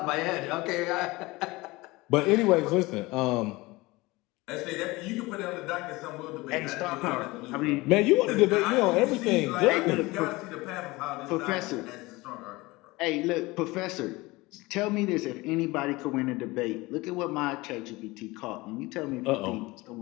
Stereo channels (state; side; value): quieter; right; 21.8 dB